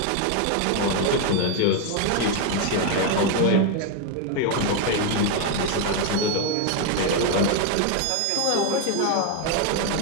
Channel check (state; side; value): different; both; correlation 0.01